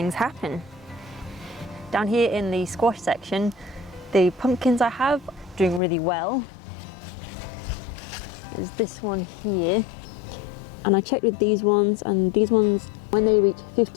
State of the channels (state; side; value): drops out; right; at 5.8 s